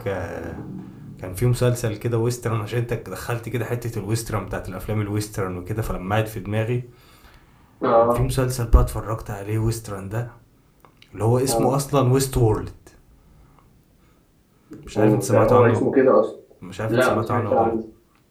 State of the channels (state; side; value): identical; both; correlation 1.00